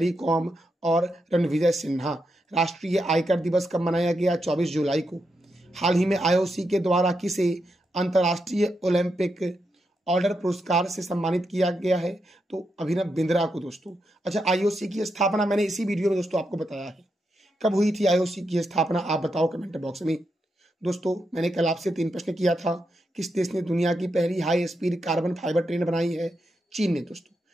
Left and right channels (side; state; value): both; normal; correlation 0.84